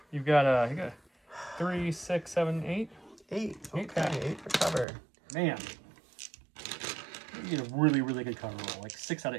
You've got you got 3, 6, 7, 8. 8. Eight Okay, 8 for cover. Man. You get a really, really good cover roll. Like 6 out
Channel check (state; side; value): drops out; left; at 4.9 s